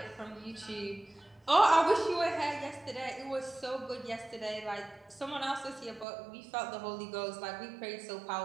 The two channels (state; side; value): drops out; left; at 6.1 s